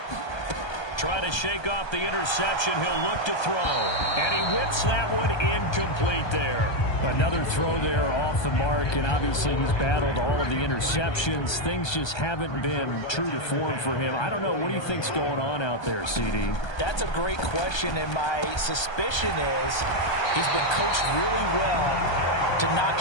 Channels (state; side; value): late; right; 1.3 ms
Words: Trying to shake off the interception. He'll look to throw. And he whips that one incomplete there. Another throw there off the mark, and obviously he's battled all of the interceptions. Things just haven't been true to form for him. I don't know. What do you think's going on out there, CD? That's a great question, and my suspicion is he's been coached really well to not